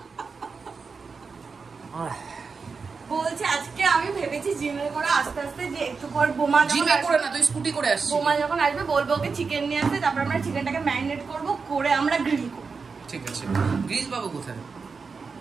বলছে আজকে আমি ভেবেছি জিমে করে আস্তে আস্তে, যে একটু পর বোমা জিমে করে না, তুই স্কুটি করে আসছিস। বোমা যখন আসবে বলবো ওকে চিকেন নিয়ে আসতে, তারপর আমরা চিকেনটাকে ম্যারিনেট করব, করে আমরা গ্রিল করব। ঠিক আছে, গ্রিল পাবো কোথায়?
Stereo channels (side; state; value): left; quieter; 4.9 dB